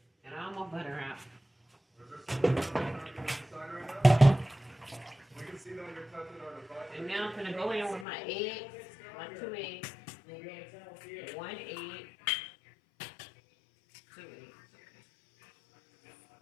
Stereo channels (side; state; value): right; drops out; at 8.1 s